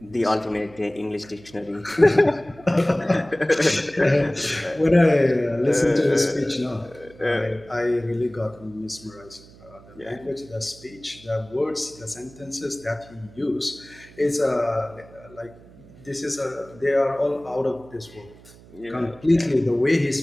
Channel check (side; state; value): right; noise; hum, 23 dB below the sound